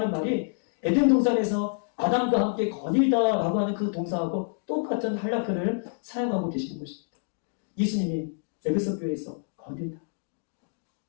말이 에덴 동산에서 아담과 함께 거닐다라고 하는 그 동사하고 똑같은 할라크를 사용하고 계시는 것입니다. 예수님이 에베소 교회에서 거닐다.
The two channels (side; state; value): right; silent; digital silence